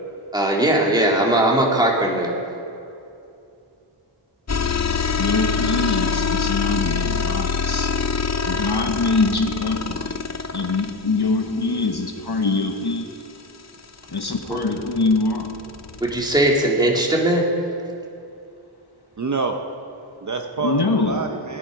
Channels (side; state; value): both; normal; correlation 0.21